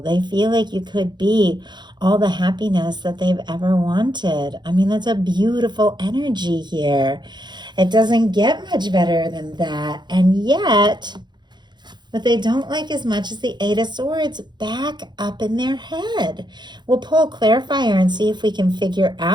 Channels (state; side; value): late; left; 0.21 ms